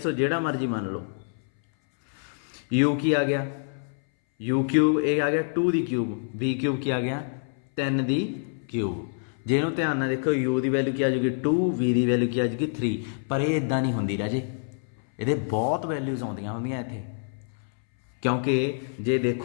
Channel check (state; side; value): silent; right; 60 dB below the other